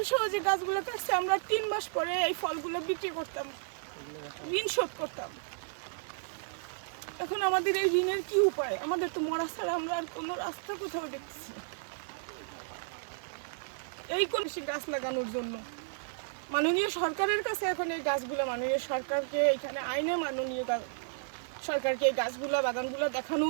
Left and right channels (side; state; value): left; silent; digital silence